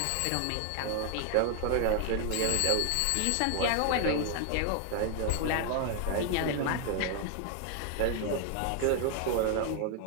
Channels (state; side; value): different; both; correlation 0.00